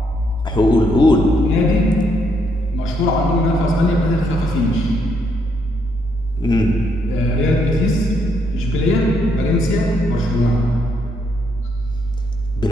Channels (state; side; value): noise; right; hum, 18 dB below the sound